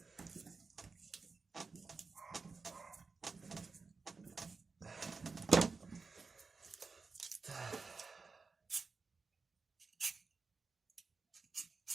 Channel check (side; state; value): left; quieter; 4.5 dB